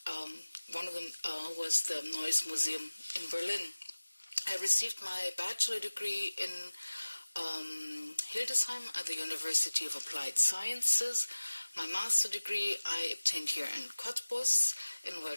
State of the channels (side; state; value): both; inverted; correlation -1.00